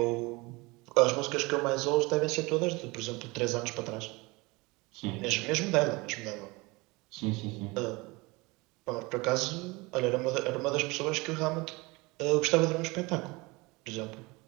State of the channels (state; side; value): quieter; left; 24.3 dB